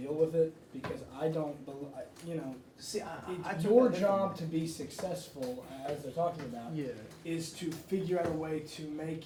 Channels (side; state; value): both; identical; correlation 1.00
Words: with it, because I don't See, it's your job to be successful, as they're talking about, Yeah. is to figure out a way to make